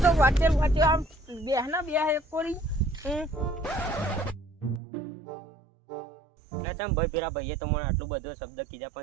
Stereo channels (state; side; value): drops out; left; at 4.8 s